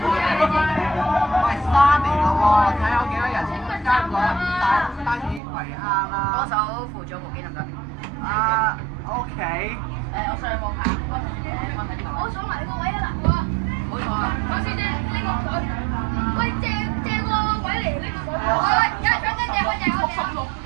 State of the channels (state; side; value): drops out; left; at 5.4 s